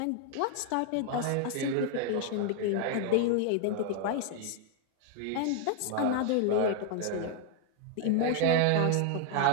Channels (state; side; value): different; both; correlation 0.00